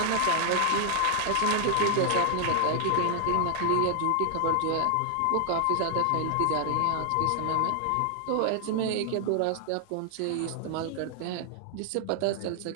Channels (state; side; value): different; both; correlation 0.00